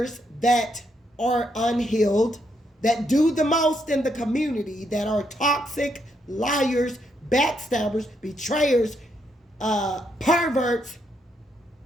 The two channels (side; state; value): both; normal; correlation 0.77